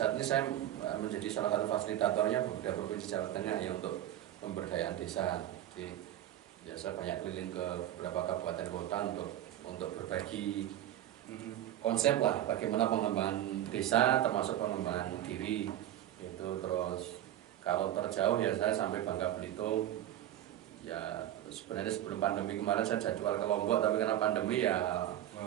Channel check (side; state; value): left; quieter; 12.4 dB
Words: ini saya menjadi salah satu fasilitatornya beberapa provinsi Jawa Tengah ya untuk pemberdayaan desa. Jadi biasa banyak keliling ke beberapa kabupaten kota untuk berbagi konsep lah bagaimana pengembangan desa termasuk pengembangan diri itu. Terus kalau terjauh ya saya sampai Bangka Belitung ya. Sebenarnya sebelum pandemi kemarin saya jadwal ke Lombok tapi karena pandemi ya